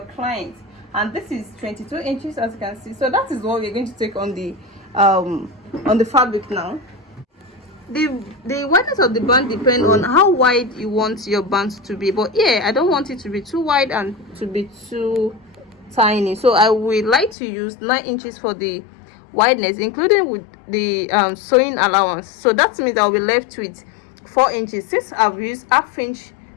client, and this is 22 inches, as you can see. So that is what we're going to take on the fabric now. The wideness of the band depends on how wide you want your band to be, but yeah, I don't want it to be too wide and to be too tiny, so I would like to use 9 inches for the wideness, including with the sewing allowance. So that means I'll be left with 4 inches since I've used half inch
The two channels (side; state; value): right; drops out; at 17.4 s